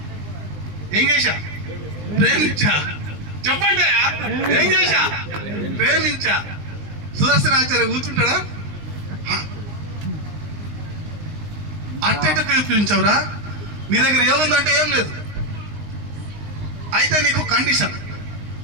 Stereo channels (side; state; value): left; late; 20 ms